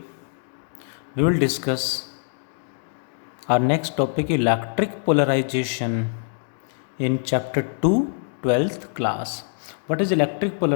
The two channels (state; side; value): silent; right; digital silence